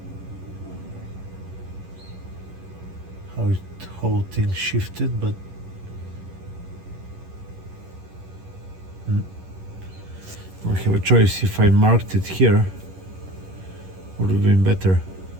how it whole thing shifted, but I have a choice. If I marked it here, would have been better.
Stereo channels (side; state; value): left; late; 11 ms